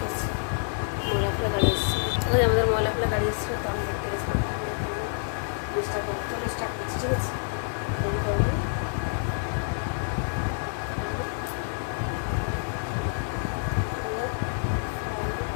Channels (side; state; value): right; silent; digital silence